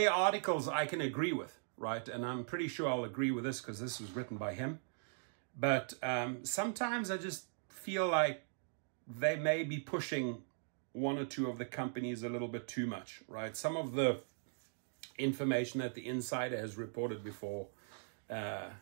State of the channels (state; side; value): silent; left; digital silence